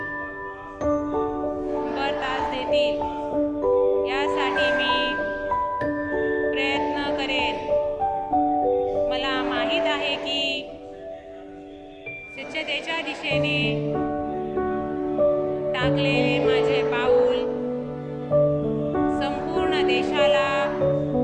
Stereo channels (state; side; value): identical; both; correlation 1.00